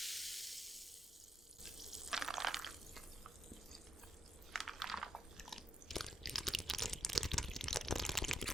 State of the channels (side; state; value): both; normal; correlation 0.82